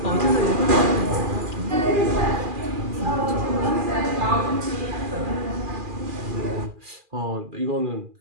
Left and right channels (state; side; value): late; left; 2.4 ms